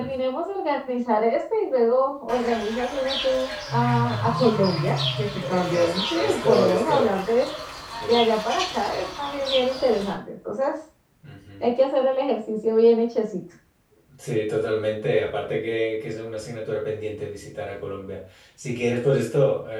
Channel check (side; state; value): both; identical; correlation 1.00